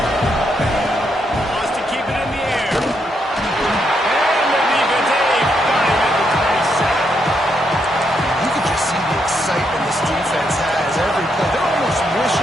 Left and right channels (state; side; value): normal; both; correlation 0.78